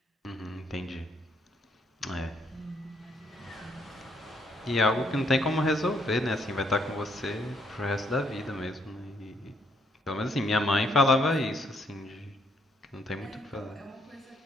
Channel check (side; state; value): both; normal; correlation 0.71